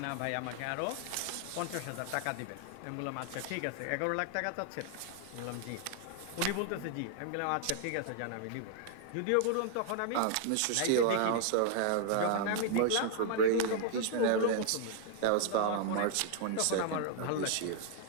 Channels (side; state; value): both; different; correlation 0.00